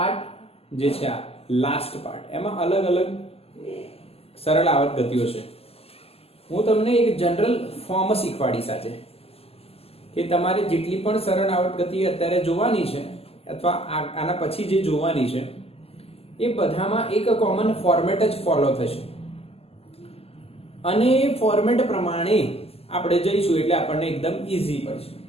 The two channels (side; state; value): right; late; 0.29 ms